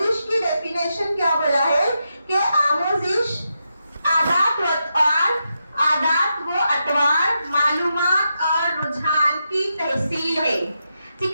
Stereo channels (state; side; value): inverted; both; correlation -0.86